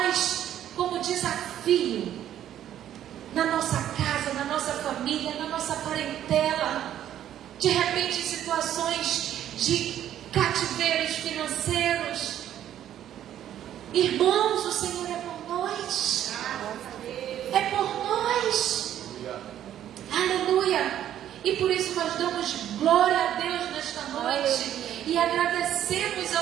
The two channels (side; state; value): left; quieter; 11.2 dB